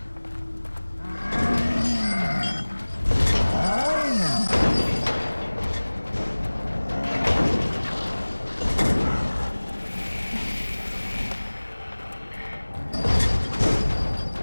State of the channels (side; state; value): both; inverted; correlation -1.00